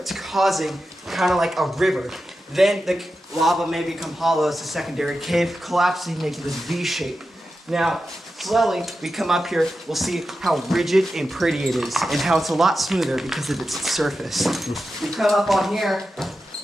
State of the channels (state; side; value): normal; both; correlation 0.91